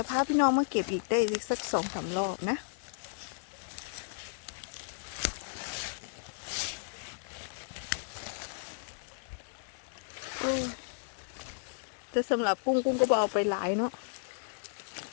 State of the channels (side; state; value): right; silent; 55 dB below the other